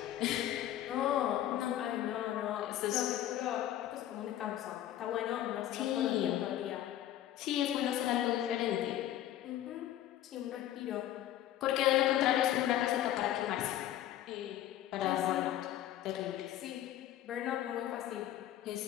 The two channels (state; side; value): quieter; right; 12.5 dB